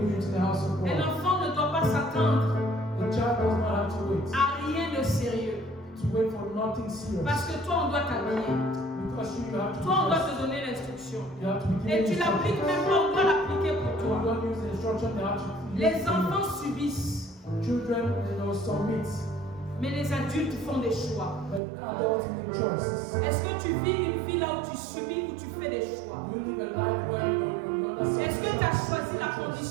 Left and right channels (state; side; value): drops out; left; at 21.6 s